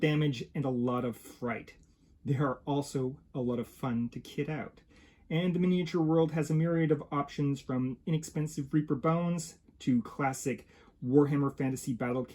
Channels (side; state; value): both; identical; correlation 1.00